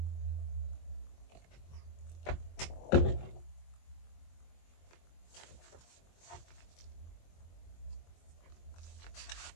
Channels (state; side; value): late; right; 23 ms